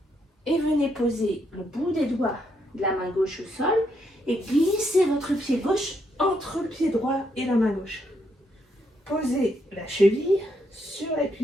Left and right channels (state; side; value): normal; both; correlation 0.76